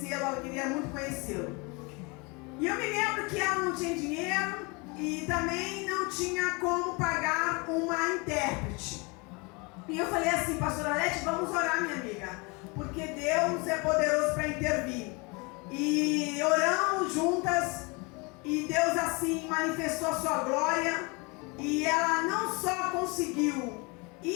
ela queria muito conhecê-lo. E eu me lembro que ela não tinha dinheiro e também não tinha como pagar uma intérprete. E eu falei assim, pastora Lete, vamos orar, minha amiga, porque Deus é poderoso para intervir. E oramos juntas e Deus assim manifestou a sua glória e ela não só conseguiu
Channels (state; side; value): quieter; right; 28.9 dB